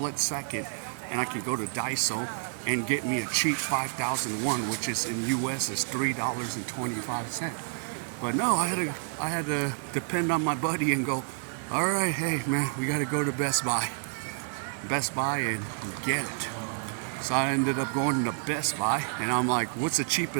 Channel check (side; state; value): left; silent; 58 dB below the other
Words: second. And I can go to Daiso and get me a cheap 5,001, which is in U.S. is $3.25. But no, I had to depend on my buddy and go, all right, hey man, we got to go to Best Buy and get it. So I ended up going to Best Buy, and I'm like, what's the